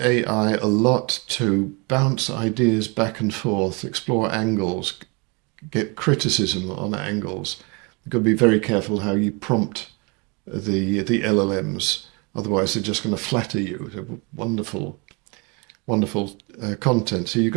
a lot to bounce ideas back and forth, explore angles, get criticism on angles. You've got to be very careful how you prompt the LLMs, otherwise they're just going to flatter you. They're wonderful wonderful content. So you've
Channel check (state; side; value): quieter; left; 30.6 dB